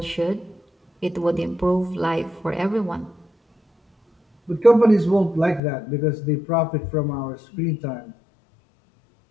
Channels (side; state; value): right; drops out; at 5.6 s